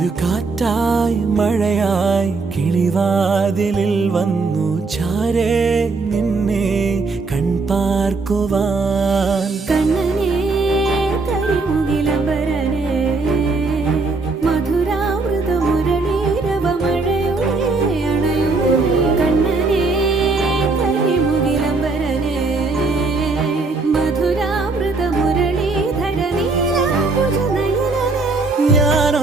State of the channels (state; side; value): quieter; left; 3.9 dB